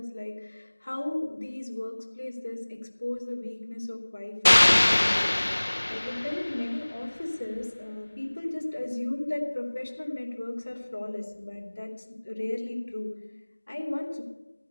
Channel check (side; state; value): both; inverted; correlation -1.00